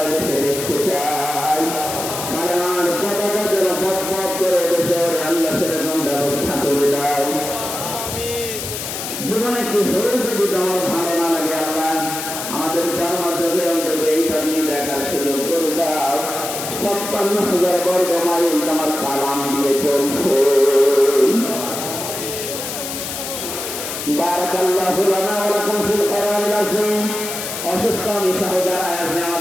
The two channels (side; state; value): left; noise; hiss, 6 dB below the sound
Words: দেশে দেখতে চাই। কালেমার পতাকা যেন পথ পথ করে দেশে ওরে আল্লাহ সেরকম ব্যবস্থা করে দাও। জীবনে কিছু যদি তোমার ভালো না লাগে আল্লাহ, আমাদের জন্মযোগে অন্তত এইটা নিয়ে দেখার সুযোগ করে দাও। 56,000 বর্গ মাইল তোমার কালাম দিয়ে চলছে। বারাকাল্লাহু লানা ওয়া লাকুম ফিল কোরআনিল আযীম। অসুস্থ নিঃসহ যারা আছে